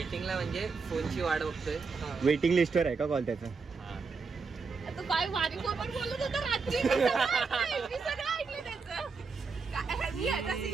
म्हणजे फोनची वाट बघतोय. वेटिंग लिस्टवर आहे का कॉल त्याचा? तू काय वारी कोण बोलत होता रात्री? मी सगळं ऐकलं त्याचं. मी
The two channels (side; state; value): left; quieter; 4.8 dB